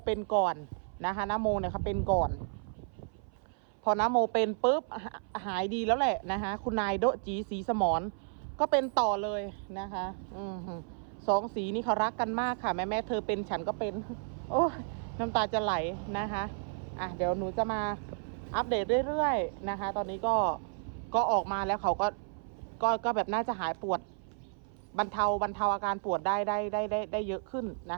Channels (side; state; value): left; silent; 56 dB below the other